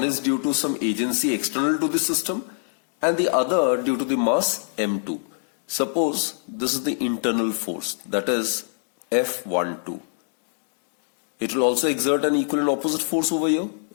is due to some agency external to the system and the other due to the mass m2. Suppose this is the internal force, that is F12. It will also exert an equal and opposite force over here.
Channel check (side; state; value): right; silent; digital silence